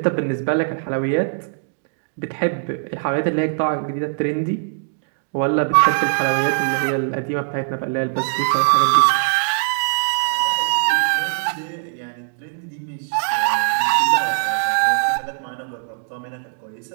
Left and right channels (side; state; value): left; silent; digital silence